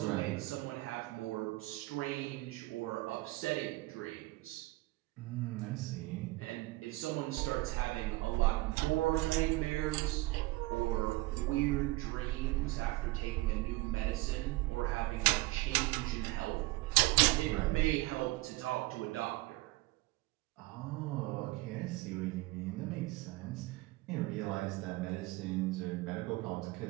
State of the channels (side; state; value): left; quieter; 20.7 dB